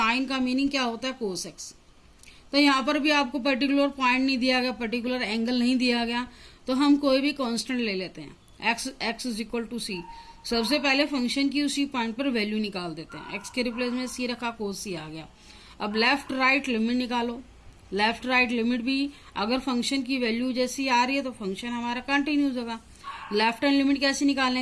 का मीनिंग क्या होता है, कोस एक्स. तो यहाँ पर भी आपको पर्टिकुलर पॉइंट नहीं दिया गया, पर्टिकुलर एंगल नहीं दिया गया, तो हम कोई भी कांस्टेंट ले लेते हैं. एक्स इज इक्वल टू सी. सबसे पहले फंक्शन की उसी पॉइंट पर वैल्यू निकाल देते हैं. एक्स के रिप्लेस में सी रखा, कोस सी आ गया. अब लेफ्ट राइट लिमिट निकालो. लेफ्ट राइट लिमिट भी अगर फंक्शन की वैल्यू जैसी आ रही है तो फंक्शन हमारा कंटिन्यूस होगा. लेफ्ट हैंड लिमिट कैसे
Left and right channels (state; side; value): identical; both; correlation 1.00